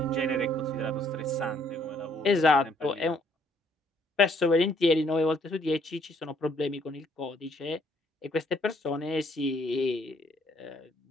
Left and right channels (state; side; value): normal; both; correlation 0.66